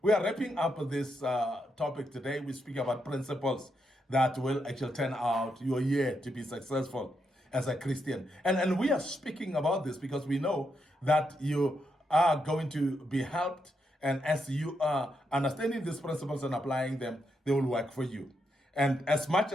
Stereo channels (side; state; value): both; normal; correlation 0.81